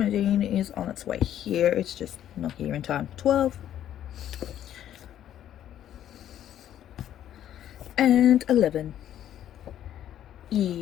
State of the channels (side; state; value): right; quieter; 11.1 dB